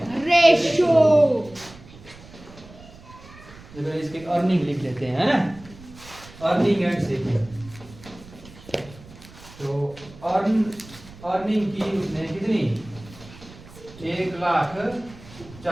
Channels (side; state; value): right; noise; rumble, 20 dB below the sound